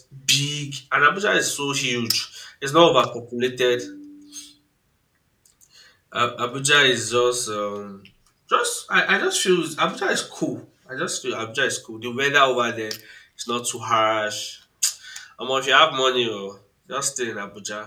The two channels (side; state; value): both; identical; correlation 1.00